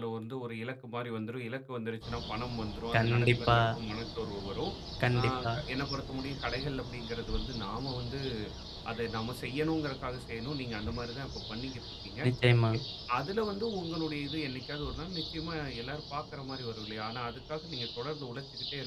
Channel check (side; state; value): both; identical; correlation 1.00